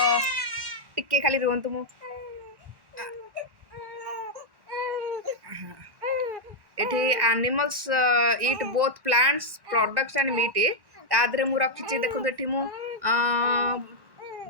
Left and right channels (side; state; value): left; late; 1.1 ms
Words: टिके खाली रुहतु मु एठी animals eat both plants products and meat. तादरे मु रखी देखो एठी मु